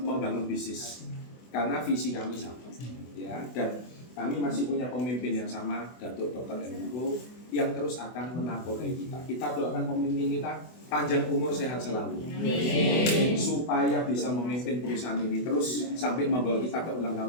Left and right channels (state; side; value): late; right; 24 ms